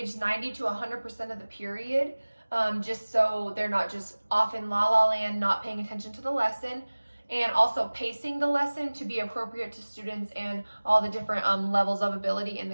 90 to 100% of the period, just so they're not just off in la land, not paying attention to the lesson, and also pacing the lesson to be appropriate to students and all the different levels of ability in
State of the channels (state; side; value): inverted; both; correlation -1.00